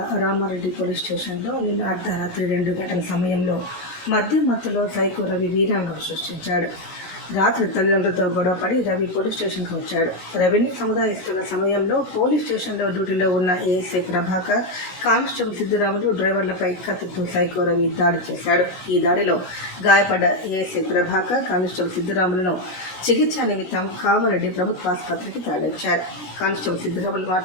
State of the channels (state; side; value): late; right; 16 ms